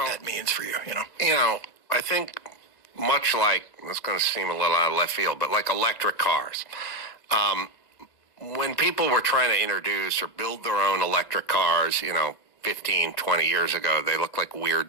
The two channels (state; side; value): late; right; 2.0 ms